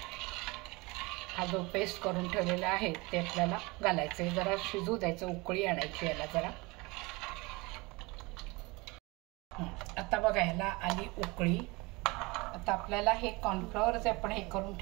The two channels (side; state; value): left; quieter; 24.8 dB